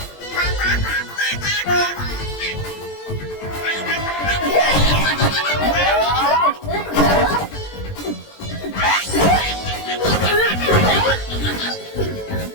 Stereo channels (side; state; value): right; late; 20 ms